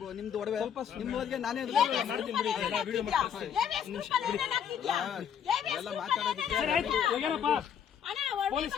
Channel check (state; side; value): quieter; right; 8.5 dB